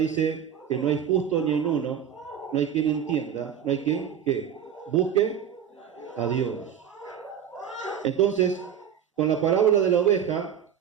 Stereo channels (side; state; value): left; quieter; 8.5 dB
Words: que no hay justo ni en uno, no hay quien entienda, no hay quien que busque a Dios. Entonces, con la parábola de la oveja,